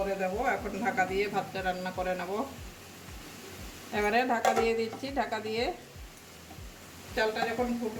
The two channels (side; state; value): both; identical; correlation 1.00